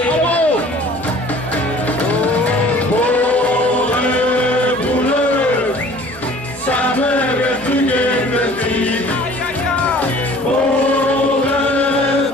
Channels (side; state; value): left; noise; hum, 22 dB below the sound